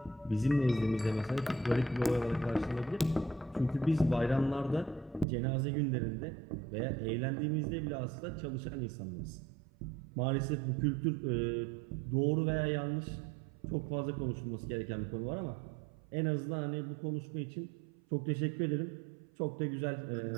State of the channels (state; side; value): drops out; left; at 5.2 s